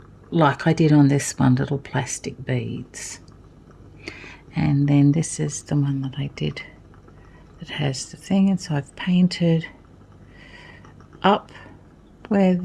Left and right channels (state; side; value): identical; both; correlation 1.00